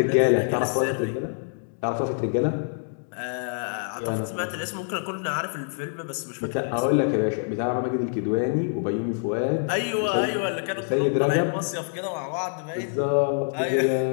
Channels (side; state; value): right; silent; digital silence